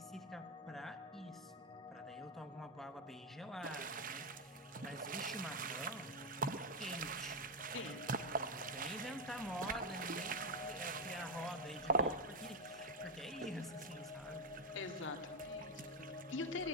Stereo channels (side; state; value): both; normal; correlation 0.06